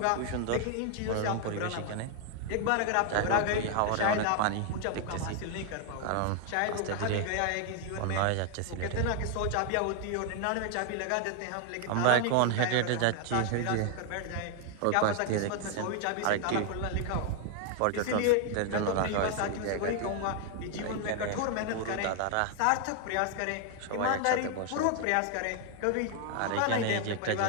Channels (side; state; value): both; different; correlation 0.00